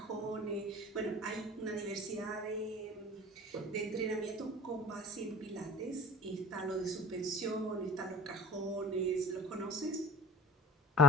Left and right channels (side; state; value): both; normal; correlation 0.41